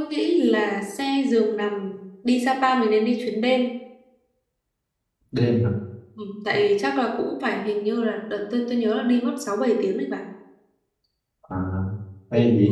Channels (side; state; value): both; identical; correlation 1.00